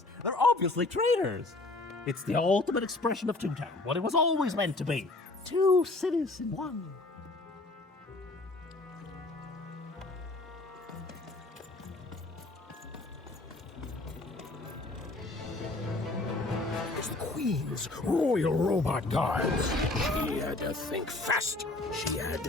They're obviously traitors. It's the ultimate expression of Two Town, what it was always meant to be. Two cities in one. It's the Queen's Royal Robot Guards. She had to think fast. She had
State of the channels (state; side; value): quieter; right; 3.0 dB